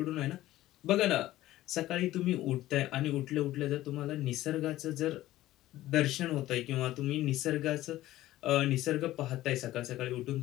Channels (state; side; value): quieter; right; 15.4 dB